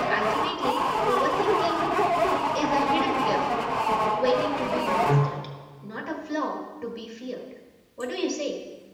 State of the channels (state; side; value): identical; both; correlation 1.00